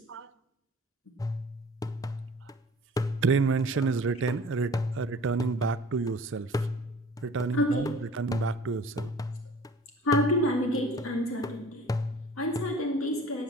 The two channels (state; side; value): normal; both; correlation 0.47